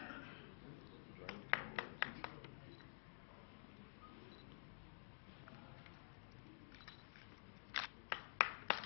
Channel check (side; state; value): right; silent; digital silence